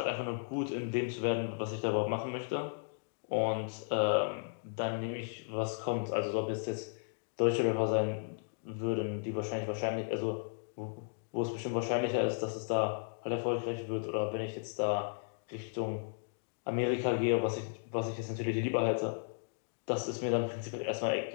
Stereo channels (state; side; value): silent; right; digital silence